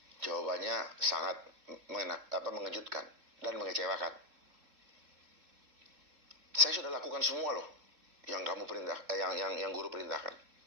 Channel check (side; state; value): left; late; 3.7 ms